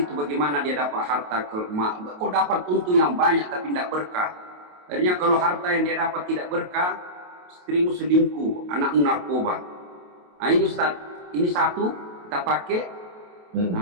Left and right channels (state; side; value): late; left; 28 ms